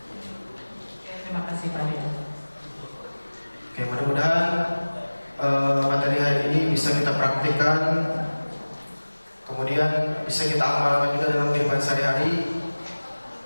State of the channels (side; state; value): both; inverted; correlation -1.00